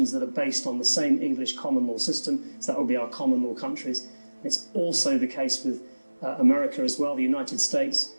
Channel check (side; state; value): both; inverted; correlation -1.00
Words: are based on the same English common law system, so that would be our common law countries. It's also the case with America as well, the United States.